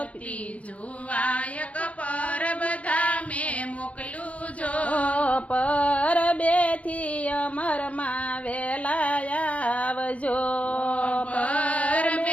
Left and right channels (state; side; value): late; right; 0.065 ms